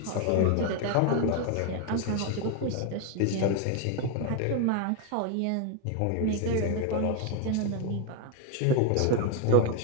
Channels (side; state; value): both; different; correlation 0.01